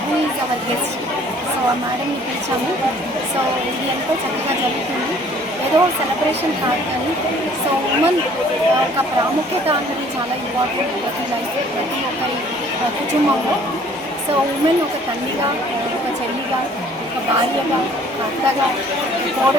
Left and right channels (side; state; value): both; normal; correlation 0.56